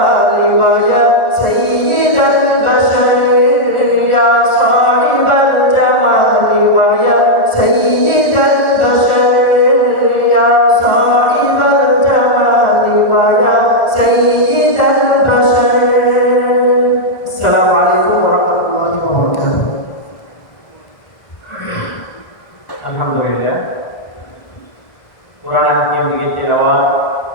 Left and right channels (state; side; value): late; right; 1.4 ms